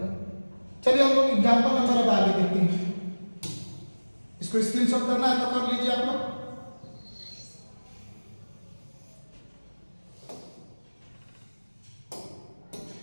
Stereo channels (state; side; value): inverted; both; correlation -1.00